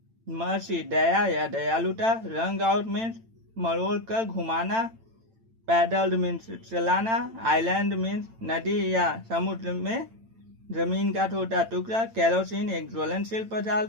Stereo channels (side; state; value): left; late; 8.9 ms